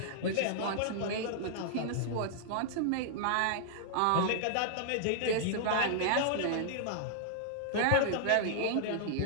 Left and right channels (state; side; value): different; both; correlation -0.01